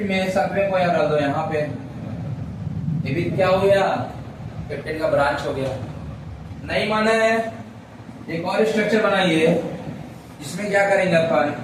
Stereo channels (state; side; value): identical; both; correlation 1.00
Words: में 7वें को यहाँ डाल दो, यहाँ पे ये भी क्या हो गया, कैप्टन का ब्रांच हो गया। नहीं माना है, एक और स्ट्रक्चर बनाइए जिसमें क्या करेंगे अपन,